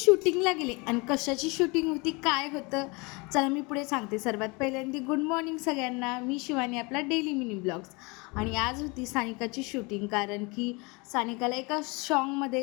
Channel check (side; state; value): right; quieter; 27.6 dB